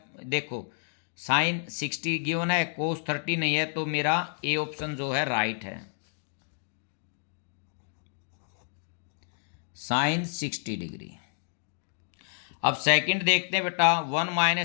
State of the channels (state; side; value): silent; right; digital silence